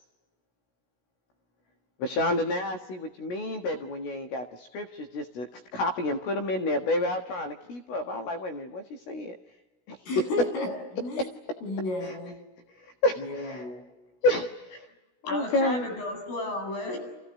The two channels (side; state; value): right; late; 16 ms